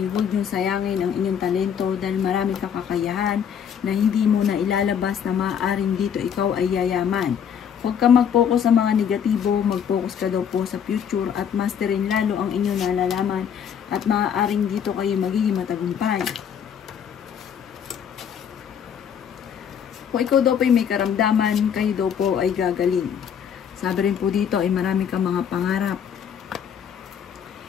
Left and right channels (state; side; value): quieter; right; 8.1 dB